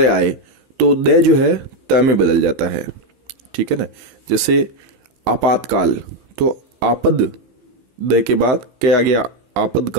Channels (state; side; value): late; left; 16 ms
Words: आए तो द जो है त में बदल जाता है, ठीक है ना। जैसे आपातकाल, तो आपद द के बाद क्या आ गया,